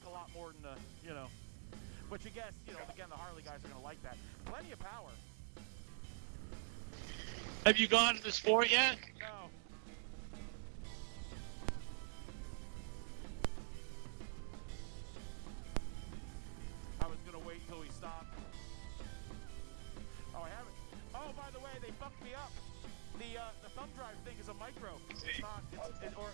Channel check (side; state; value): left; silent; digital silence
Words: a lot more than the, which I guess, again, the Harley guys are going to like that. Plenty of power. Have you gone to the Sport yet? No. I was going to wait till we stopped. Oh, I haven't. Oh, by the way, they fucked me up. The thumb drive thing is a micro. It's not. It's a